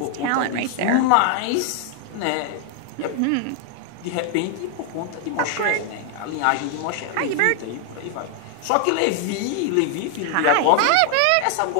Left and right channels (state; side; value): different; both; correlation 0.00